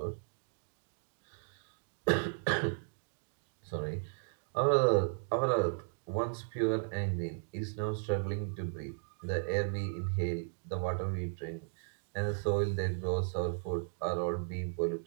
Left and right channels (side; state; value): left; silent; digital silence